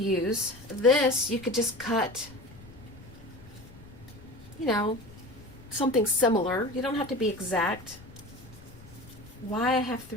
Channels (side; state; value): left; noise; rumble, 20 dB below the sound